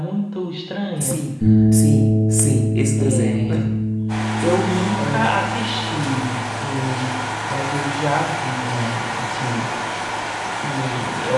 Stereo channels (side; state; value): both; identical; correlation 1.00